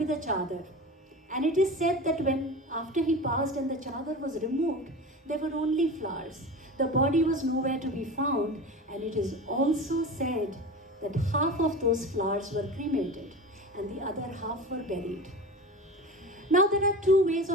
a chadar. And it is said that after he passed and the chadar was removed, there were only flowers. The body was nowhere to be found, and it is also said that half of those flowers were cremated and the other half were buried. Now there are two ways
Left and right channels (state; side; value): normal; both; correlation 0.31